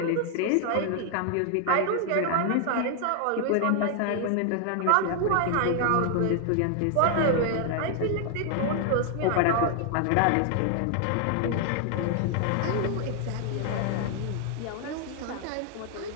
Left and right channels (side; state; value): both; different; correlation 0.00